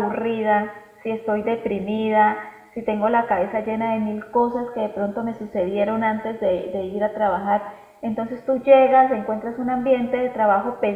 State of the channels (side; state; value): both; identical; correlation 1.00